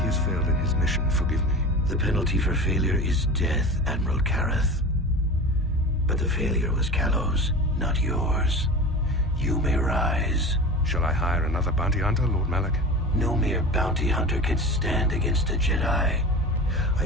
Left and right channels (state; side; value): normal; both; correlation 0.32